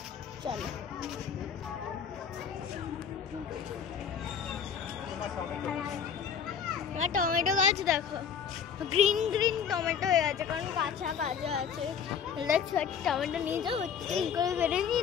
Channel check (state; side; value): quieter; right; 7.3 dB